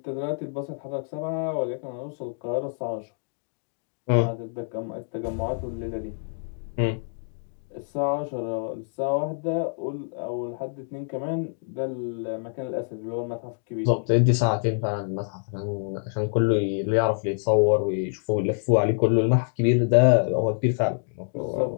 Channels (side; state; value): right; silent; digital silence